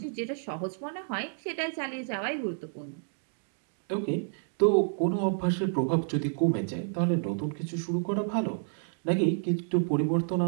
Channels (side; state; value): left; silent; digital silence